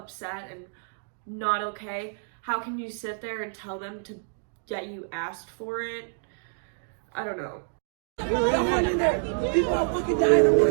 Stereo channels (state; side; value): silent; left; digital silence